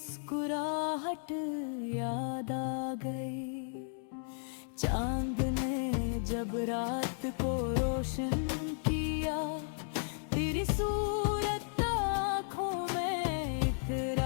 याद आ गई। चांद ने जब रात को रोशन किया, तेरी सूरत आँखों में इतर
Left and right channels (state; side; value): silent; right; digital silence